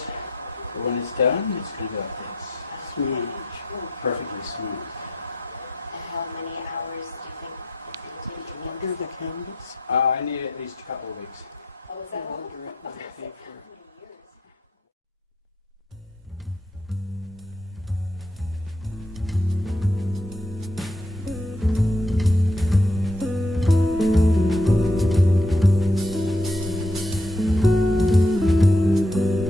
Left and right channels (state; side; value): normal; both; correlation 0.71